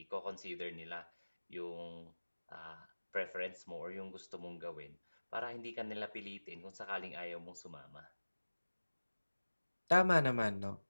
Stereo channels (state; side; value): inverted; both; correlation -1.00